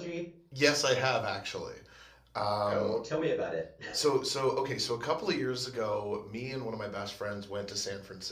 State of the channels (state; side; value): identical; both; correlation 1.00